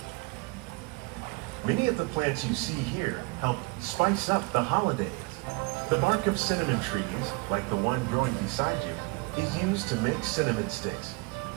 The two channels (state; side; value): quieter; left; 26.9 dB